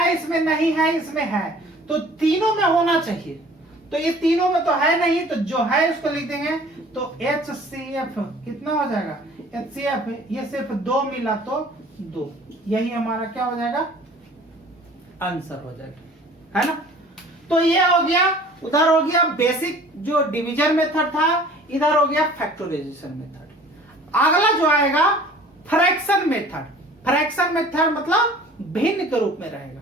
इसमें नहीं है, इसमें है, तो तीनों में होना चाहिए। तो ये तीनों में तो है नहीं, तो जो है उसको लिख देंगे। तो HCF कितना हो जाएगा, HCF ये सिर्फ 2 मिला तो 2, यही हमारा क्या हो जाएगा, आंसर हो जाएगा, है ना। तो ये हो गया, उधर हो गया बेसिक जो डिवीजन मेथड था, इधर हो गया फैक्टराइजेशन मेथड। अगला जो आएगा फ्रैक्शन मेथड। फ्रैक्शन मेथड मतलब भिन्न के रूप में रहेगा।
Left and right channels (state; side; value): normal; both; correlation 0.49